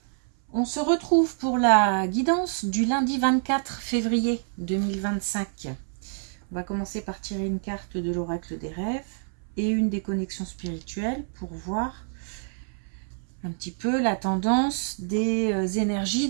On se retrouve pour la guidance du lundi 24 février 2025. On va commencer par tirer une carte de l'oracle des rêves et une des connexions spirituelles pour voir un petit peu la tendance des énergies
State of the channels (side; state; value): left; silent; 60 dB below the other